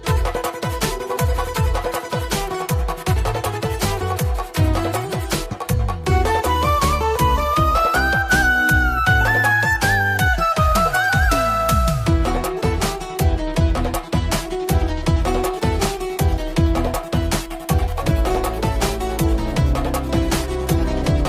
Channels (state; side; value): identical; both; correlation 1.00